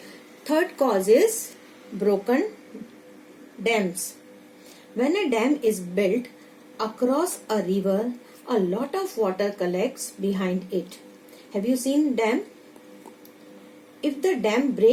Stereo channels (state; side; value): identical; both; correlation 1.00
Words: Third cause is broken dams. When a dam is built across a river, a lot of water collects behind it. Have you seen dam? If the dam